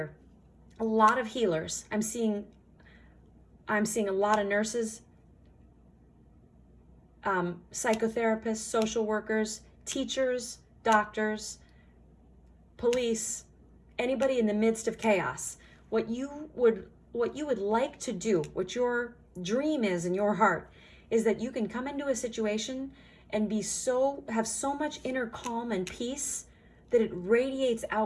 A lot of healers. I'm seeing a lot of nurses, psychotherapists, social workers, teachers, doctors, police, anybody in the midst of chaos. What you would like to do, what your dream is in your heart, is that you can come into a situation and have so much inner calm and peace that it radiates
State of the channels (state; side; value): identical; both; correlation 1.00